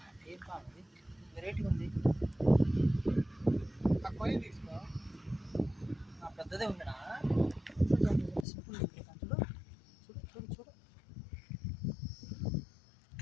ఏం కావాలి, వెరైటీ ఉంది. పెద్దదే ఉందినా? సింపుల్ చూడు చూడు చూడు.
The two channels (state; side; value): drops out; right; at 8.5 s